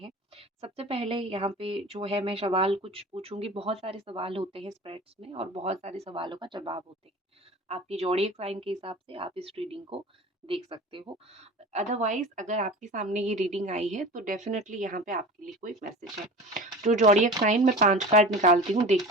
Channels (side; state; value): both; normal; correlation 0.36